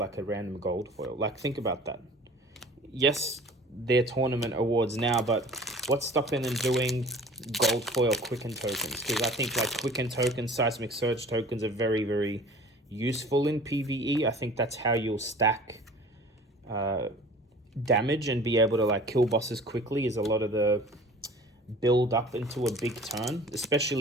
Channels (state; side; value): normal; both; correlation 0.45